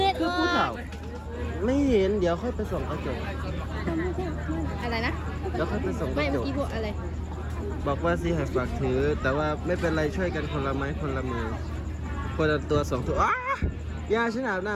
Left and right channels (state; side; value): identical; both; correlation 1.00